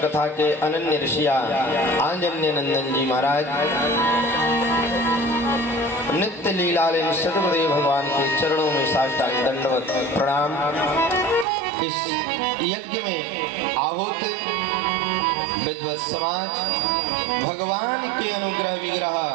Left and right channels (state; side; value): drops out; left; at 11.5 s